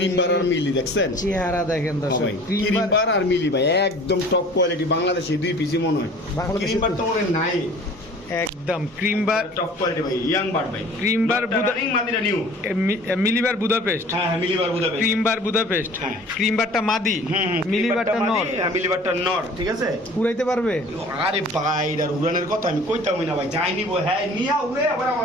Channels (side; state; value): right; noise; rumble, 29 dB below the sound